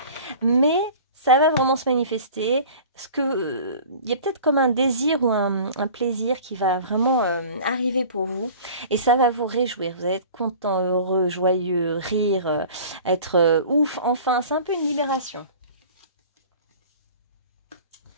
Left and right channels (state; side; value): inverted; both; correlation -0.42